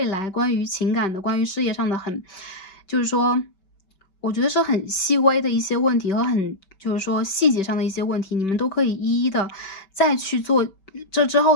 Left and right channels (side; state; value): right; late; 5.2 ms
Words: 来关于情感的、关于事业上的就是说，我觉得是很细微的一些问题和就是说细节上的一些问题，你们都可以一一的再去做这之后